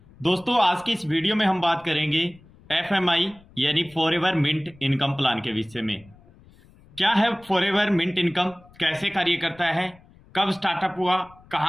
दोस्तों, आज की इस वीडियो में हम बात करेंगे एफएमआई यानी फॉरएवर मिंट इनकम प्लान के विषय में। क्या है फॉरएवर मिंट इनकम, कैसे कार्य करता है, कब स्टार्टअप हुआ,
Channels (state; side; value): noise; left; rumble, 26 dB below the sound